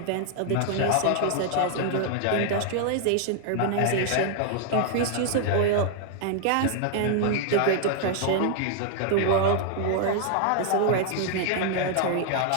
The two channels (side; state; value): both; different; correlation 0.00